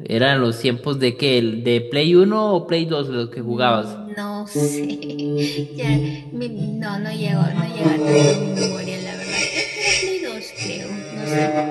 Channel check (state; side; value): identical; both; correlation 1.00